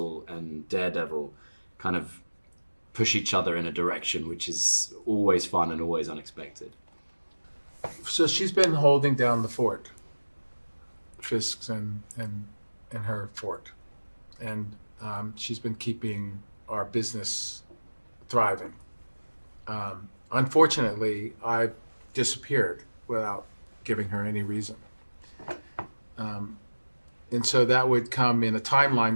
and Daredevil kind of push each other in a direction which is always fun and always unexpected. So she's been holding down the fort, Fisk's and her fort, and she's been keeping our business thriving. Unfortunately, I disappeared without giving her any reason, and so that would come in a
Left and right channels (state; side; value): inverted; both; correlation -1.00